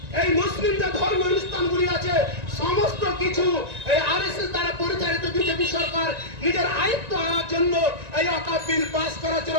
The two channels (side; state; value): left; late; 1.9 ms